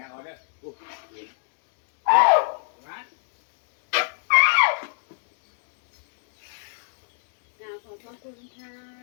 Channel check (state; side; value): silent; right; digital silence